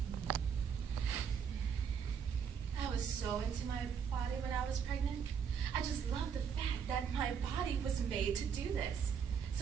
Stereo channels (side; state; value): left; quieter; 7.1 dB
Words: I was so into my body when I was pregnant. I just loved the fact that my body was made to do this.